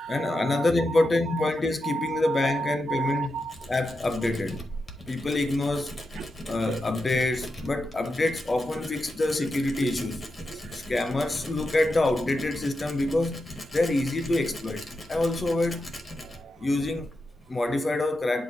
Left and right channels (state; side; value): normal; both; correlation 0.88